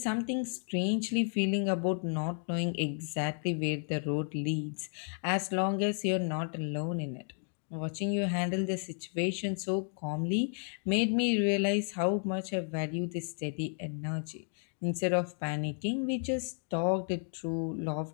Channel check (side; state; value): right; silent; 56 dB below the other